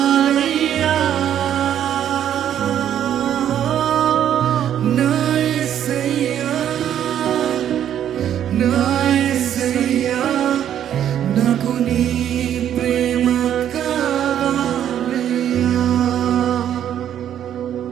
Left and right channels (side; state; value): left; quieter; 10.3 dB